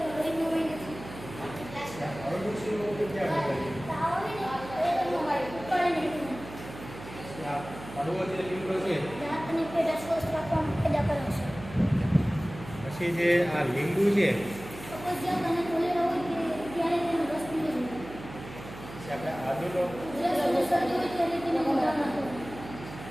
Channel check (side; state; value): right; noise; hum, 14 dB below the sound